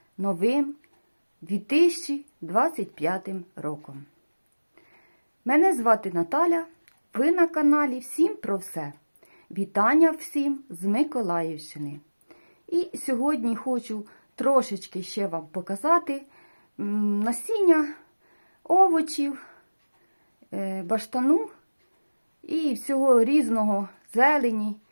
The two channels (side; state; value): both; inverted; correlation -1.00